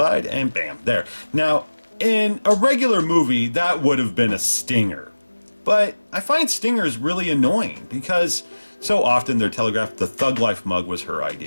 and bam, there. Now, in a regular movie, that would have been a stinger. But I find stingers really annoying because so often they're telegraphed. The Thug Life mug was her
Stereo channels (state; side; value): inverted; both; correlation -1.00